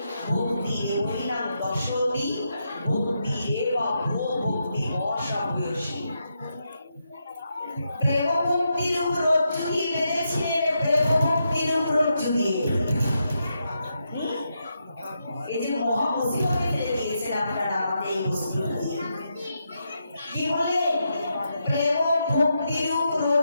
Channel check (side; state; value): both; inverted; correlation -0.83